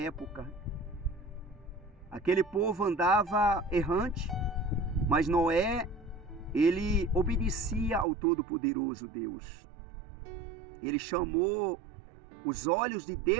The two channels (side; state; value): left; drops out; at 8.1 s